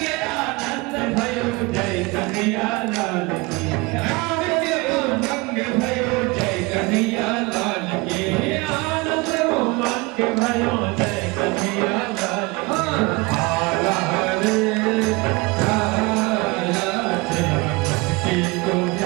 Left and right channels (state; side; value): quieter; left; 25.4 dB